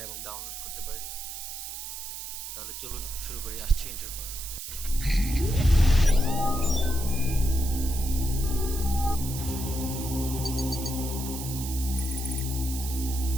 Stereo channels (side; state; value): right; noise; hiss, 8 dB below the sound